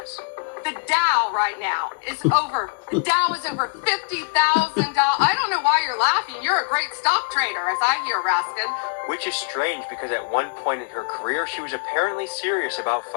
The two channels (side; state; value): right; quieter; 39.4 dB